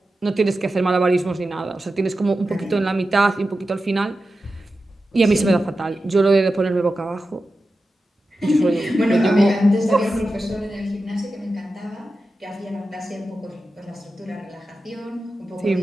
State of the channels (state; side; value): normal; both; correlation 0.92